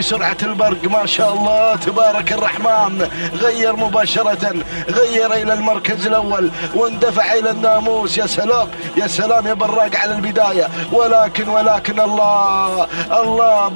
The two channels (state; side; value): inverted; both; correlation -1.00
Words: البرق ما شاء الله تبارك الرحمن، غير مباشره، غير الى المركز الاول واندفع الى الناموس. يا سلام يا سلام يا براق على البدايه، ولكن الله